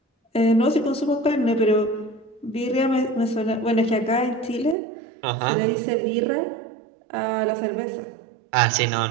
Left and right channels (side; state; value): left; drops out; at 4.8 s